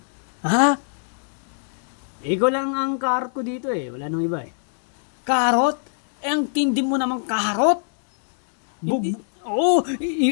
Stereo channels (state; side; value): silent; right; digital silence